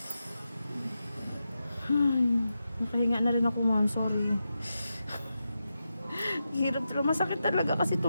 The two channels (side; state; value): both; inverted; correlation -0.89